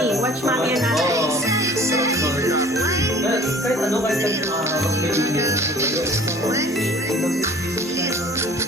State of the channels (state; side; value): normal; both; correlation 0.49